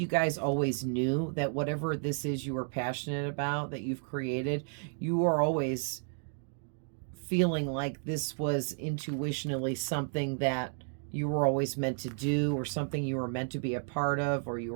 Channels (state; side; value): silent; left; 56 dB below the other